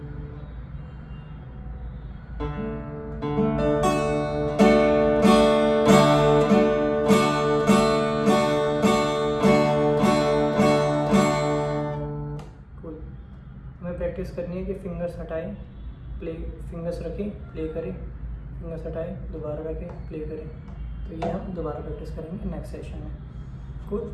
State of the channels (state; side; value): identical; both; correlation 1.00